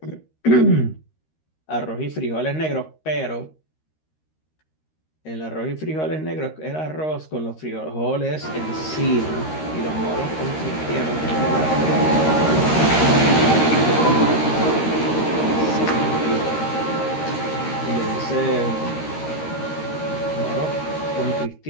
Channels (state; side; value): late; right; 13 ms